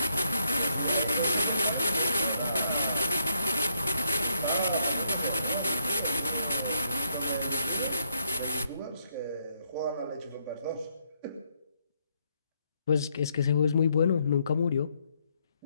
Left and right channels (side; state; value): both; inverted; correlation -0.71